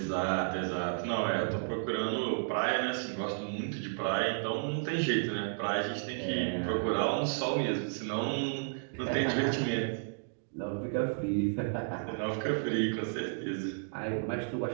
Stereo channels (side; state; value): left; silent; digital silence